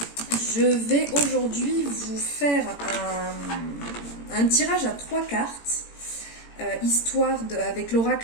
Je vais aujourd'hui vous faire un tirage à 3 cartes, avec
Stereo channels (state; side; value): late; right; 18 ms